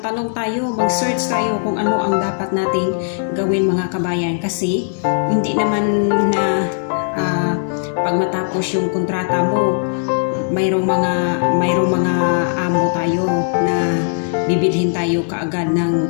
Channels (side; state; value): right; silent; digital silence